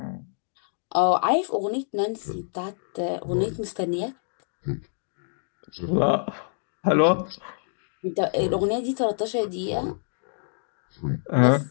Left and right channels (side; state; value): right; silent; digital silence